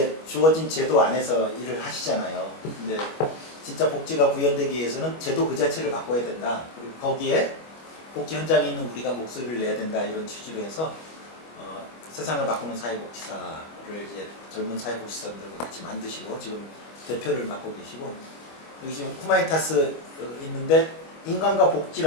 주어진 제도 안에서 일을 하시잖아요. 근데 진짜 복지가 구현되기 위해서는 제도 그 자체를 바꿔야 된다. 그리고 거기에 복지 현장에 있는 우리가 목소리를 내야 된다. 이런 취지로 해서 세상을 바꾸는 사회복지사를 이제 젊은 사회복지사들과 같이 만드시고 지금 대표를 맡고 계시고 여기 지금 후마니타스 있는데 인간과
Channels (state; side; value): late; right; 25 ms